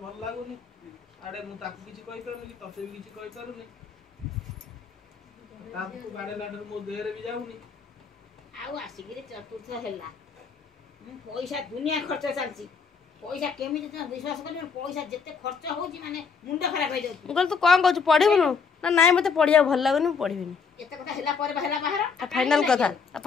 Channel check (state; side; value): quieter; right; 5.6 dB